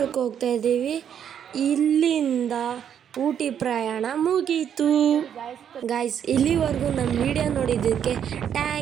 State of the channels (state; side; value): quieter; left; 8.8 dB